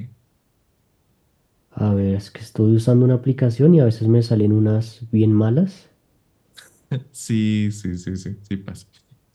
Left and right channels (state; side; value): identical; both; correlation 1.00